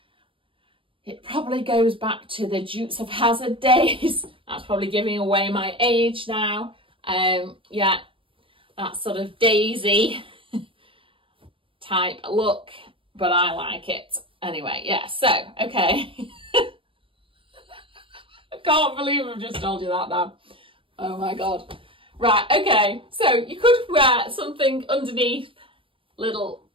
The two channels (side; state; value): left; late; 0.25 ms